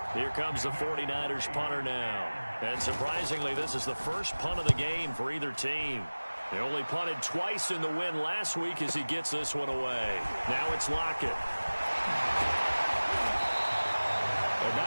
Here comes the 49ers punter now. And surprisingly, this is the first punt of the game for either team. They only punted twice in the win last week as he gets this one away. Now it's Lockett. A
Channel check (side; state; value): both; inverted; correlation -1.00